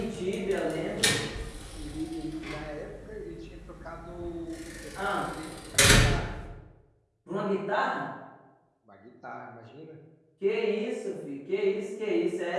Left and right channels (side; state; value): both; identical; correlation 1.00